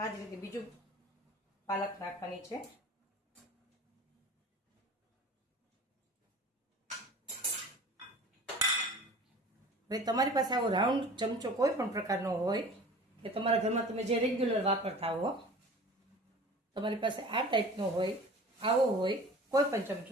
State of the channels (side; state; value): both; normal; correlation 0.42